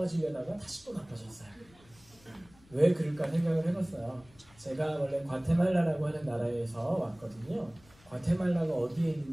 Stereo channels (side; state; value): left; noise; rumble, 27 dB below the sound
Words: 다시 또 나빠졌어요. 왜 그럴까 생각을 해봤어요. 제가 원래 과테말라라고 하는 나라에서 왔거든요. 과테말라가 어디에